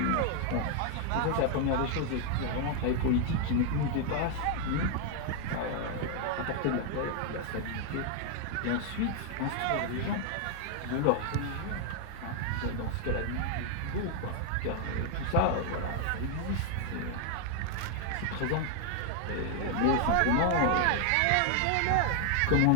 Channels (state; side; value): different; both; correlation 0.00